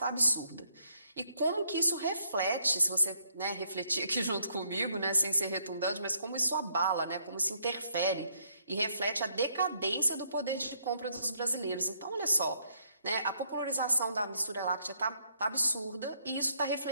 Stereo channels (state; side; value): inverted; both; correlation -0.71